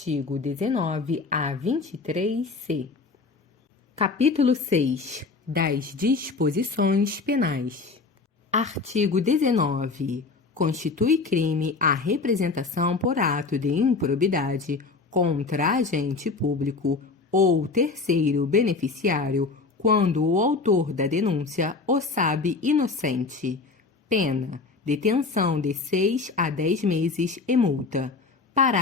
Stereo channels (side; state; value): right; quieter; 4.2 dB